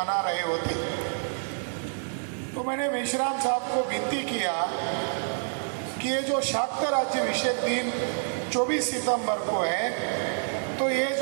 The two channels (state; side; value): silent; left; digital silence